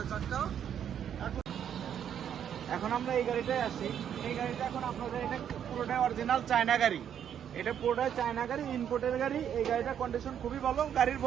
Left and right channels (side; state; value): left; quieter; 9.1 dB